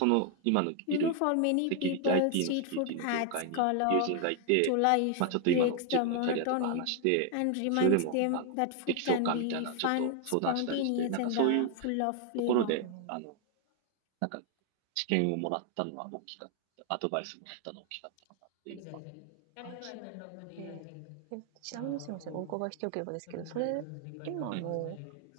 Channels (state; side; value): different; both; correlation 0.00